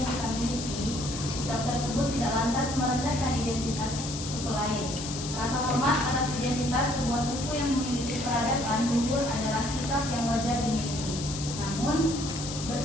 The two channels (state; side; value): noise; left; hiss, 8 dB below the sound